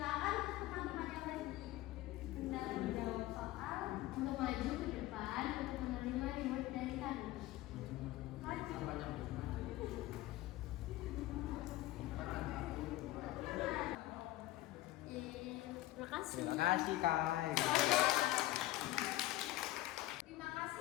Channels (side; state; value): right; quieter; 16.4 dB